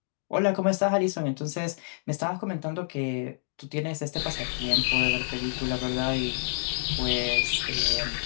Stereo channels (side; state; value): right; silent; digital silence